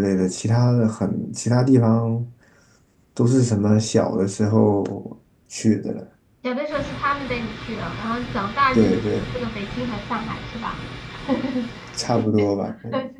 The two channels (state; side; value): identical; both; correlation 1.00